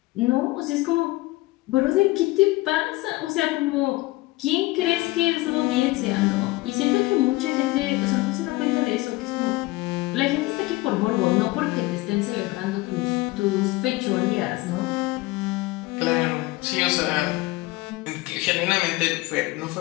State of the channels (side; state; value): right; quieter; 20.7 dB